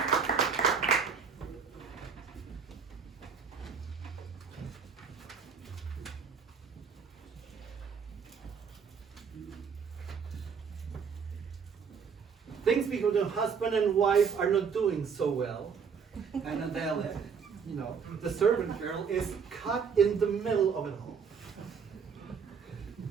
Things because the husband and wife are not doing so well. And Adele, you know, the servant girl is caught in the middle of it all.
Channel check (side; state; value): left; quieter; 6.2 dB